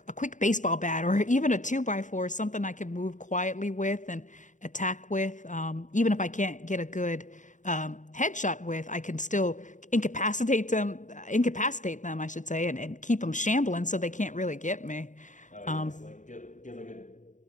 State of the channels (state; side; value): late; right; 0.36 ms